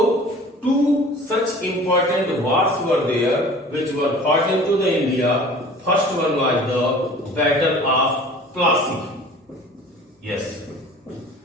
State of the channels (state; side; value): normal; both; correlation 0.44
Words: two such important wars were there which were fought into the India. First one was the Battle of Plassey. Yes,